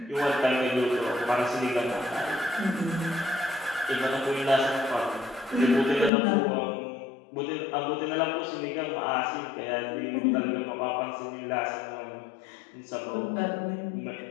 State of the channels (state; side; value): drops out; right; at 6.1 s